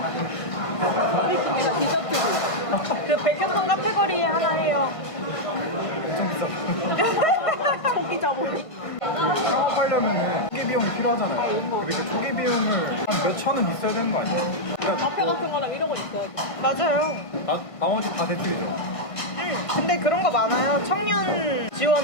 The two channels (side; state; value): right; late; 1.5 ms